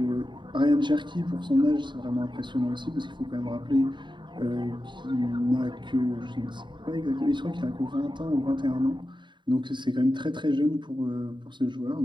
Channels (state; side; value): late; left; 0.23 ms